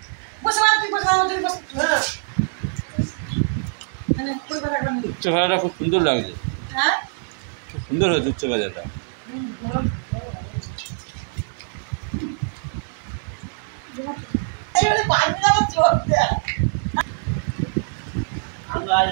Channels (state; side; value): silent; left; 63 dB below the other